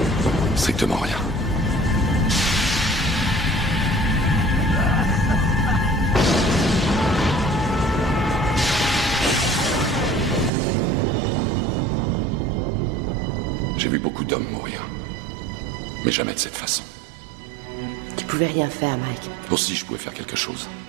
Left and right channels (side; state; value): left; drops out; at 10.5 s